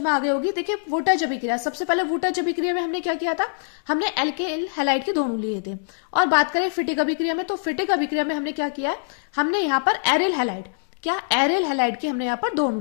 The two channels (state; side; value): silent; right; digital silence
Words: आ गई होगी। देखिए वोल्टेज अभिक्रिया, सबसे पहले वोल्टेज अभिक्रिया में हमने क्या किया था, हमने एल्किल हैलाइड के दोनों लिए थे। और बात करें फिटिक अभिक्रिया में, तो फिटिक अभिक्रिया में हमने क्या किया है, हमने यहाँ पर एरिल हैलाइड, क्या एरिल हैलाइड के हमने यहाँ पर दोनों